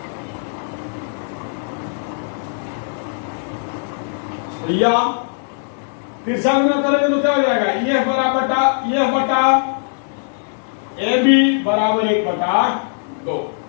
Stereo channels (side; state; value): right; silent; digital silence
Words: या फिर से अंग्रेज करेंगे तो क्या हो जाएगा, EF बटा AB बराबर 1 बटा 2।